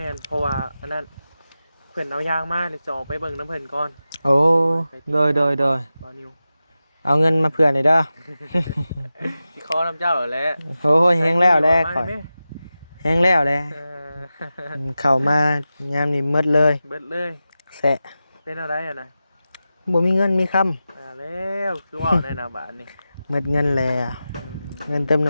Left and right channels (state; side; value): inverted; both; correlation -0.93